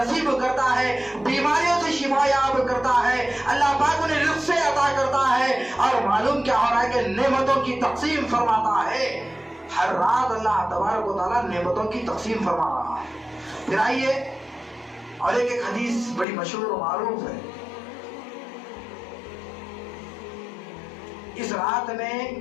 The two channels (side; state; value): right; drops out; at 16.2 s